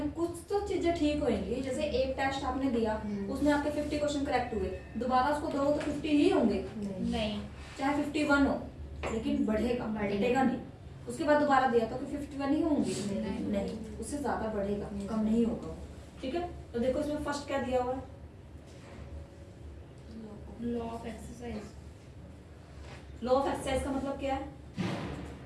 कुछ तो चीजें ठीक होंगी। जैसे एक टेस्ट आपने दिया, उसमें आपके 50 क्वेश्चन करेक्ट हुए, दोबारा उसको दो तो 50 ही होंगे, नहीं, चाहे 51 हो, लेकिन बढ़ेगा, घटेगा नहीं। उसके बाद दोबारा दिया तो 51 ही होंगे, नहीं, उससे ज्यादा बढ़ेगा, कम नहीं होगा, ठीक है। तो देखो इसमें फर्स्ट क्या दिया हुआ है, law of exercise. Law of exercise का मतलब क्या है,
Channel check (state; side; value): identical; both; correlation 1.00